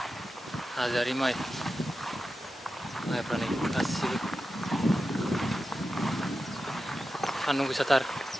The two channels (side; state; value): both; normal; correlation 0.91